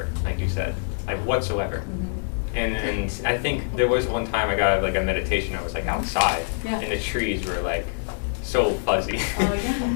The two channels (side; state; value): right; silent; digital silence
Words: like you said, like whatsoever. Mhm. And I think there was one time I got like a meditation. I was like outside, Yeah. and the trees were like so fuzzy. Oh, yeah.